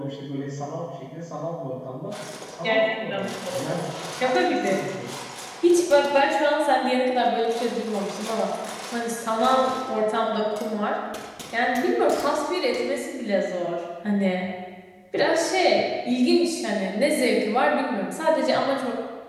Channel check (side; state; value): both; identical; correlation 1.00